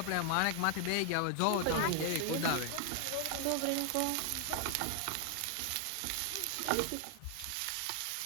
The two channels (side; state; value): both; different; correlation 0.00